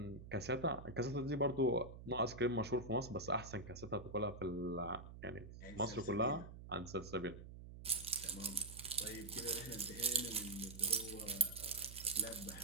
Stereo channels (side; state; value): right; noise; hum, 13 dB below the sound